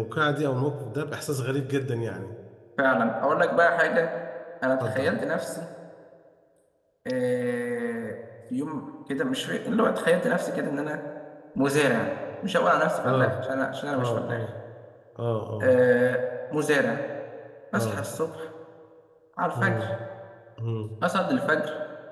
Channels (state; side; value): identical; both; correlation 1.00